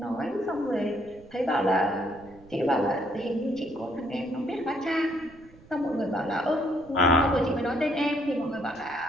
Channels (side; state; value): right; noise; rumble, 23 dB below the sound